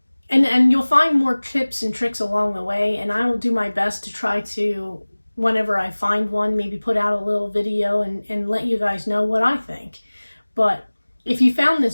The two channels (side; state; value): both; inverted; correlation -1.00